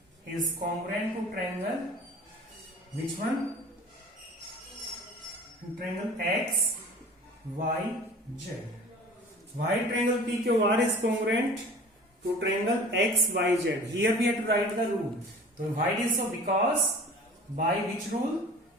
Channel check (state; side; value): normal; both; correlation 0.42